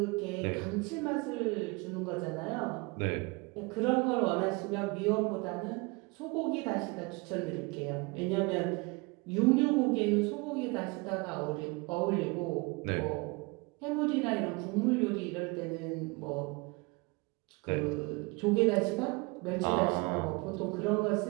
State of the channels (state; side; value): quieter; left; 27.0 dB